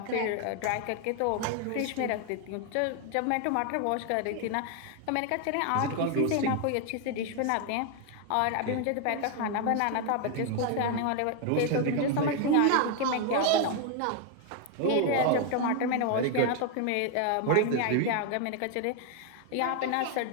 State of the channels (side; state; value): both; different; correlation 0.00